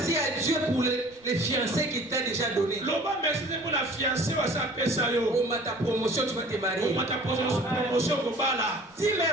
à Dieu pour les fiancés qu'il t'a déjà donné. Oh, ta promotion, tu vas te marier. Dis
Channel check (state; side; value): noise; right; rumble, 30 dB below the sound